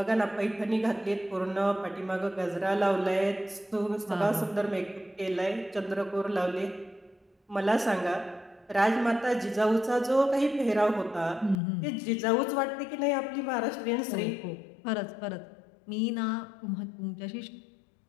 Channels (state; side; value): drops out; right; at 11.6 s